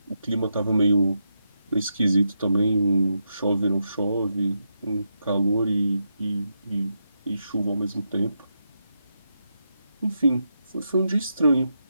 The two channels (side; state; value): both; inverted; correlation -0.85